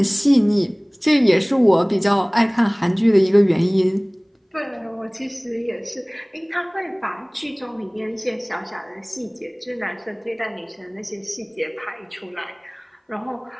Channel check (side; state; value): both; identical; correlation 1.00